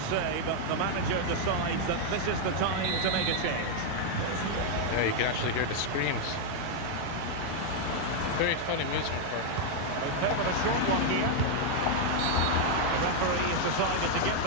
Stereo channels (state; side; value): different; both; correlation 0.00